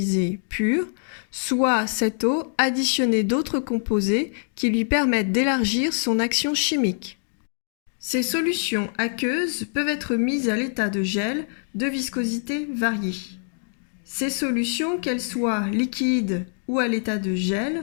pure, soit cette eau additionnée d'autres composés qui lui permettent d'élargir son action chimique. Ces solutions aqueuses peuvent être mises à l'état de gel de viscosité variée. Ces solutions, qu'elles soient liquides ou à l'état de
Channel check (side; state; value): right; silent; digital silence